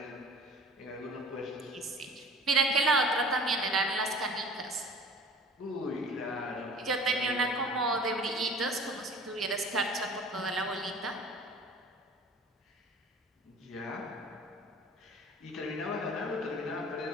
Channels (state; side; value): normal; both; correlation 0.44